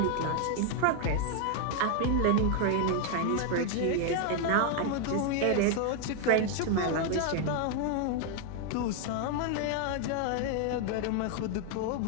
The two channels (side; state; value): both; different; correlation 0.00